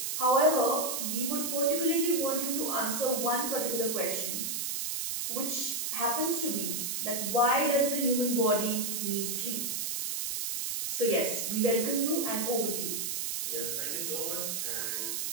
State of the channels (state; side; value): noise; right; hiss, 2 dB below the sound